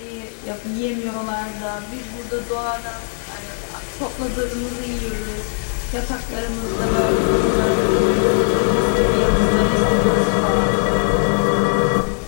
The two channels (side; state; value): right; silent; digital silence